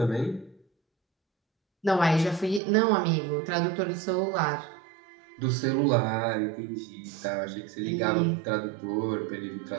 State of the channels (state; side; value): drops out; left; at 2.6 s